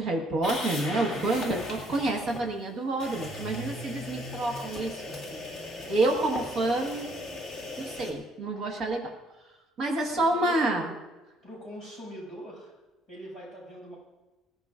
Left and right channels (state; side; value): normal; both; correlation 0.66